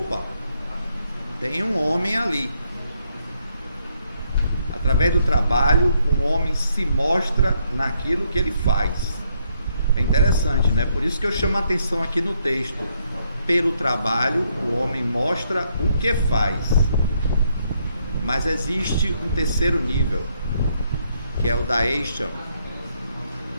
tem um homem ali. Através do trabalho, um homem se mostra naquilo que ele faz. É interessante, né? Por isso que eu chamo a atenção aqui no texto. Pelo trabalho, o homem mostra o que faz. Mas existe um terceiro nível, que é o da Eisham,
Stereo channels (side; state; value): both; inverted; correlation -0.73